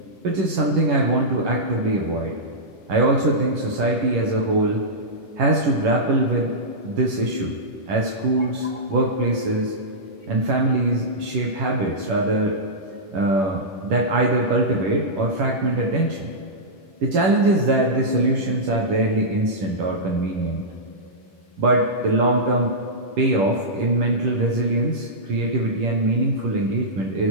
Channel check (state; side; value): late; left; 11 ms